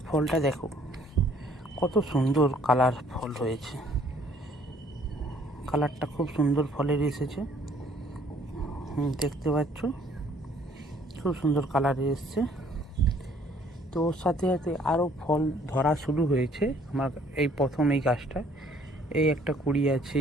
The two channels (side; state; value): both; normal; correlation 0.60